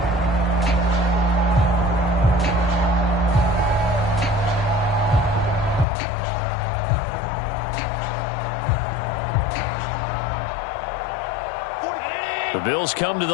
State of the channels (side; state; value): right; drops out; at 5.9 s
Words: The Bills come to